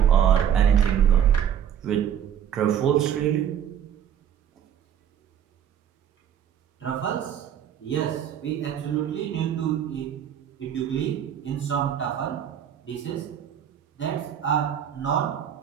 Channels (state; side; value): quieter; left; 9.3 dB